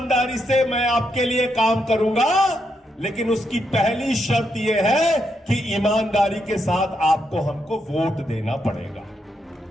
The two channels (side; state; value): both; normal; correlation 0.80